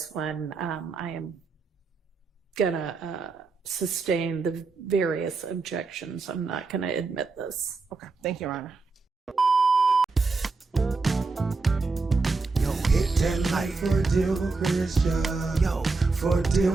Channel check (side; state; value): left; quieter; 4.0 dB